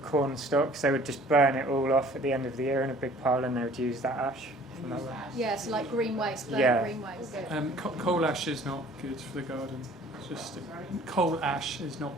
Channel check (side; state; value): both; normal; correlation 0.52